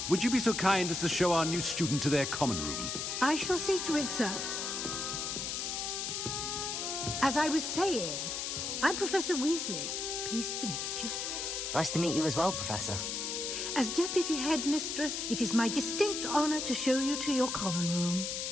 would you be so kind as to show our new student to their common room? I shall see to it, sir. As I was saying, I'm Professor Weasley. Pleased to meet you. Nice to meet you as well, Professor. As Deputy Headmistress, it is my distinct honor to show you to your common room.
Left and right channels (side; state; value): left; noise; hiss, 3 dB below the sound